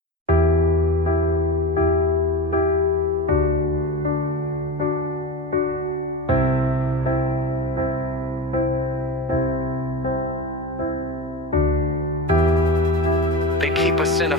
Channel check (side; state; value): both; normal; correlation 0.25